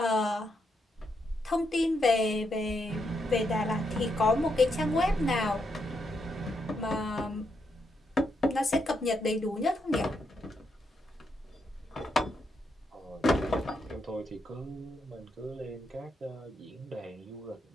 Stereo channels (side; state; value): both; normal; correlation 0.80